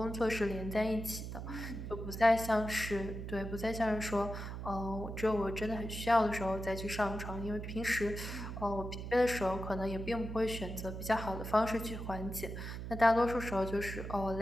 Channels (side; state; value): right; noise; hum, 7 dB below the sound